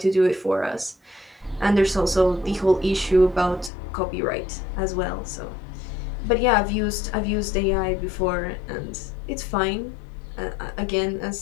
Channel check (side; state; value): right; drops out; at 3.7 s